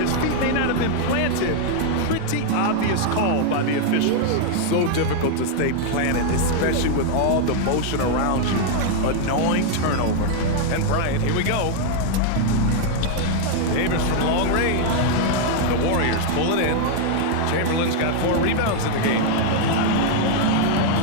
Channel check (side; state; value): both; different; correlation 0.00